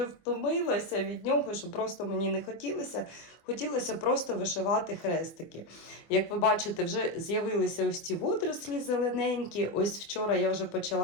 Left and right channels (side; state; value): right; late; 24 ms